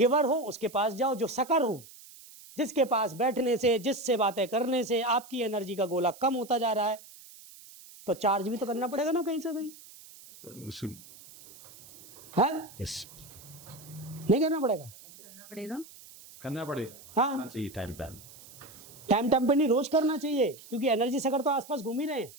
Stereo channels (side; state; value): right; noise; hiss, 20 dB below the sound